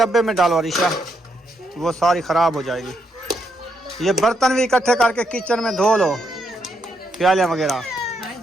में डालो अरीशा, वो सारी खराब हो जाएगी। ये बर्तन भी इकट्ठे करके किचन में धो लो, प्याले वगैरह। हाँ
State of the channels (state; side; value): normal; both; correlation 0.78